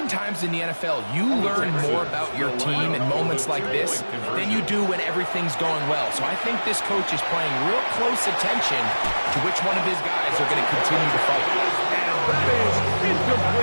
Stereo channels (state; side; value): inverted; both; correlation -1.00